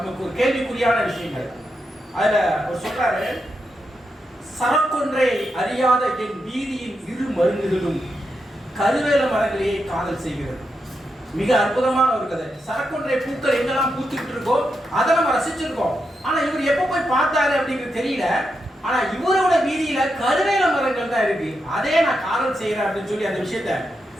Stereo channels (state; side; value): normal; both; correlation 0.85